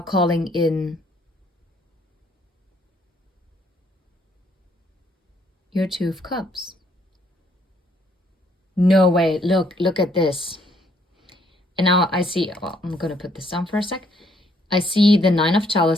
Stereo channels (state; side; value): normal; both; correlation 0.68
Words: calling in your Two of Cups. No way, look at this. And now I see, well, I'm gonna put this down for a sec. I see the Nine of